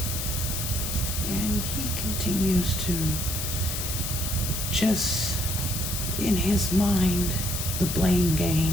And he continues to just, in his mind, the blame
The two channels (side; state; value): left; noise; hiss, 3 dB below the sound